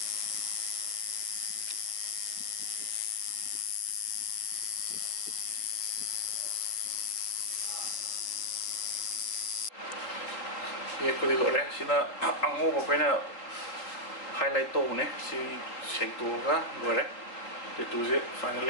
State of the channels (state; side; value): late; right; 3.9 ms